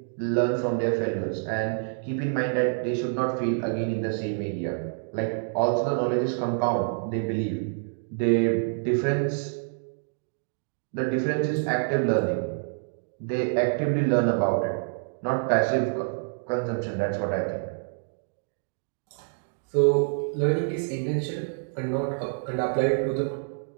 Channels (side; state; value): left; silent; digital silence